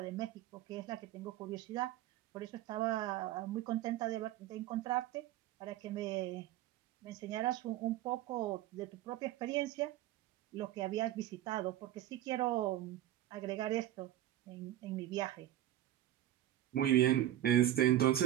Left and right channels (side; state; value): left; quieter; 13.3 dB